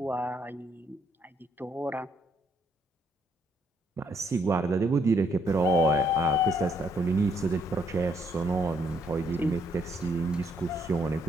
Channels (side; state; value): both; normal; correlation 0.71